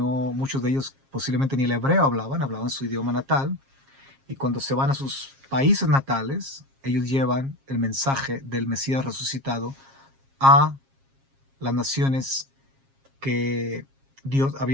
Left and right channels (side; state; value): left; late; 7.4 ms